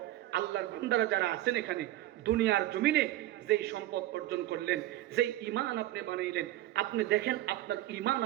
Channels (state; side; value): quieter; left; 15.1 dB